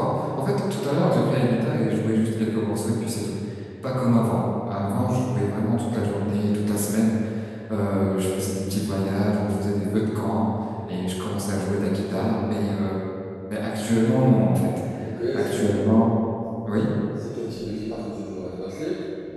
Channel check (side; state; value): both; identical; correlation 1.00